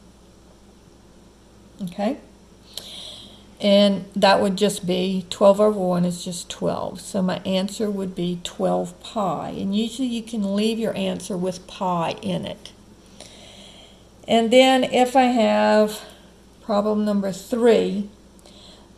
Okay? And that would just be 12 over 1 is just 12. So my answer would be 12 pi. And usually you can leave your answer with pi in it. And then if I have problem number 3,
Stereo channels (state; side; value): identical; both; correlation 1.00